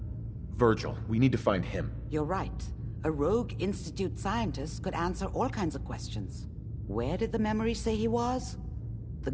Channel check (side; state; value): both; identical; correlation 1.00